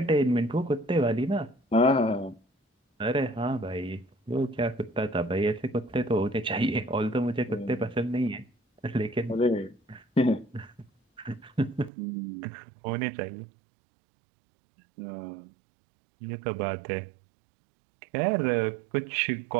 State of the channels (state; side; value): drops out; left; at 11.9 s